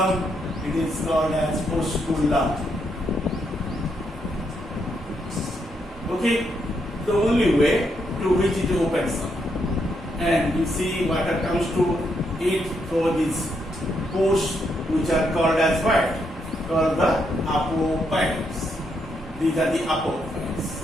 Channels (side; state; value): both; normal; correlation 0.78